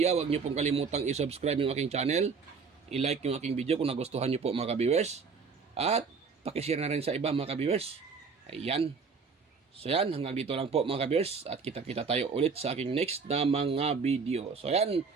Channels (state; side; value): quieter; left; 5.2 dB